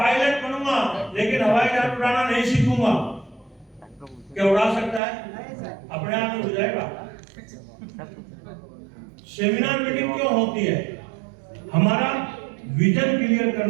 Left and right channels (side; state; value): left; drops out; at 5.0 s